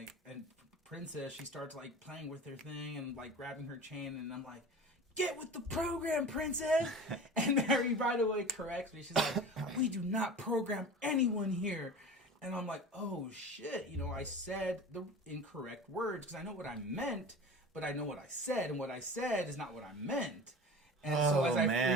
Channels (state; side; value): normal; both; correlation 0.35